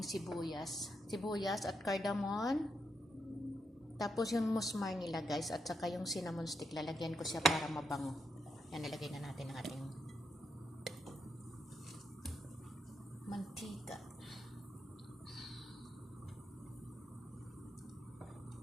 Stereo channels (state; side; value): normal; both; correlation 0.81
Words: sibuyas at cardamom. Tapos yung musmar nila guys at saka yung cinnamon stick, lalagyan ko siya para mabango. Yan, nilagay na natin ang ating mantika.